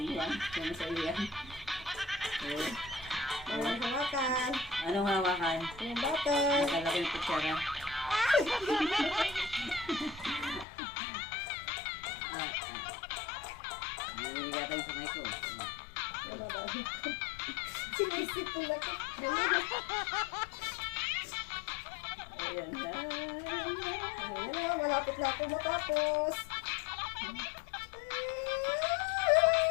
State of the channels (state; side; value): drops out; right; at 10.7 s